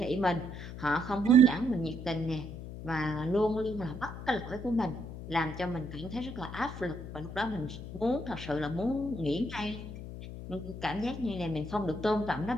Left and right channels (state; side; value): noise; left; hum, 10 dB below the sound